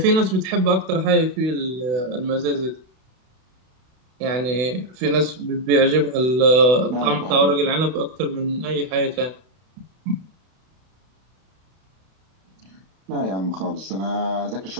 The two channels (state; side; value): late; left; 32 ms